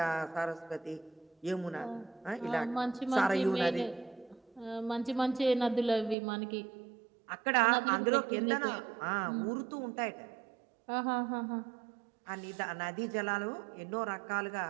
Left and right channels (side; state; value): left; drops out; at 6.2 s